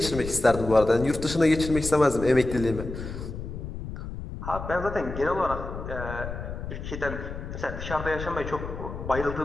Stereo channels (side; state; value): left; noise; rumble, 8 dB below the sound